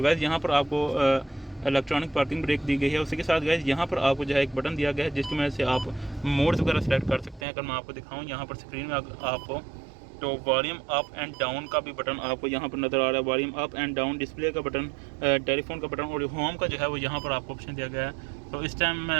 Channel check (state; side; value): drops out; left; at 7.5 s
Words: गाइस यहाँ पर आपको इलेक्ट्रॉनिक पार्किंग ब्रेक दी गई है। उसी के साथ गाइस यहाँ पर आपको जो है एक बटन दिया गया है जिसकी वजह से आप मोड्स वगैरह सेलेक्ट कर सकते हैं। अगर मैं आपको दिखाऊँ यहाँ पर स्क्रीन में आपको तो वॉल्यूम अप एंड डाउन का भी बटन आपको यहाँ पर नज़र आ रहा है, volume up and down, display का बटन, टेलीफोन का बटन, और होम का जो है वो यहाँ पर आपको ऑप्शन दिया गया है। तो इस टाइम